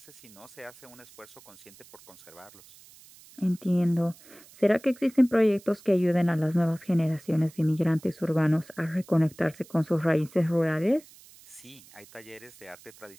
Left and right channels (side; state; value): right; noise; hiss, 23 dB below the sound